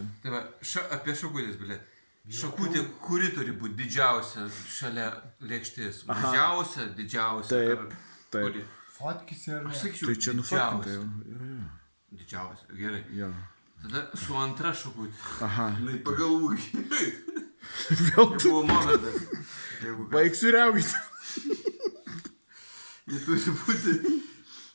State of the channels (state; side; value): inverted; both; correlation -1.00